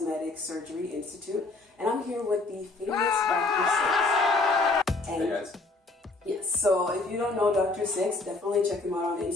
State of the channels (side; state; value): right; quieter; 3.3 dB